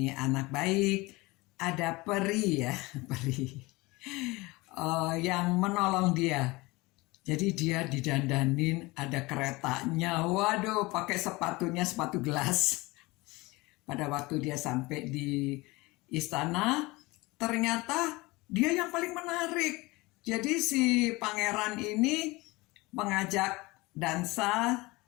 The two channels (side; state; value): right; quieter; 22.7 dB